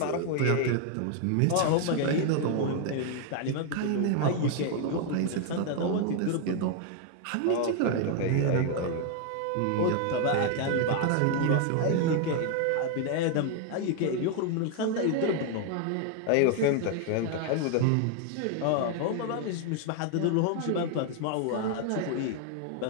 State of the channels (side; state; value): both; different; correlation 0.00